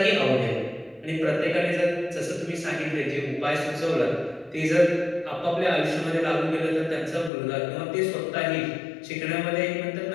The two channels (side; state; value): right; drops out; at 7.3 s